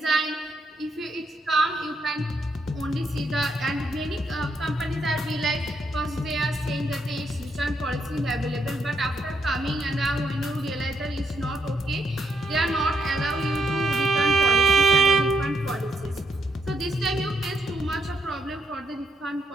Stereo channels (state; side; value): normal; both; correlation 0.78